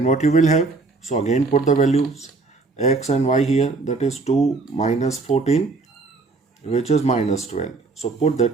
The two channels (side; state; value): left; quieter; 3.7 dB